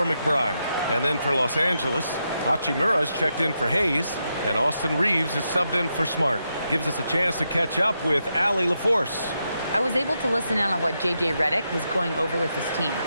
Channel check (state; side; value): inverted; both; correlation -0.84